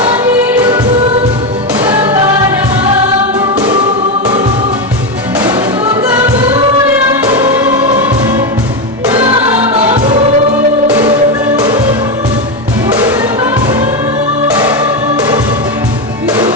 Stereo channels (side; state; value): both; normal; correlation 0.11